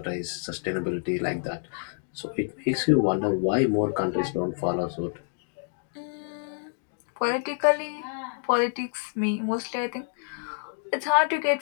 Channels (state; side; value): silent; right; digital silence